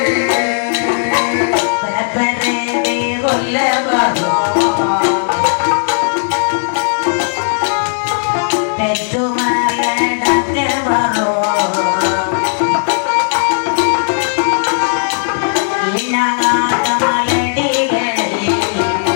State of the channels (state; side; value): silent; right; digital silence